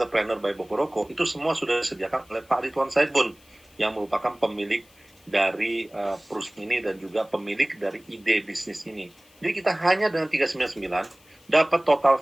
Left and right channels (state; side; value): noise; left; hiss, 29 dB below the sound